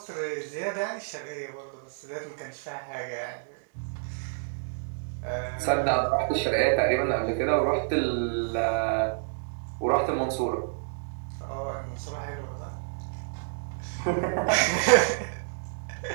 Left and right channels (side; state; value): left; silent; digital silence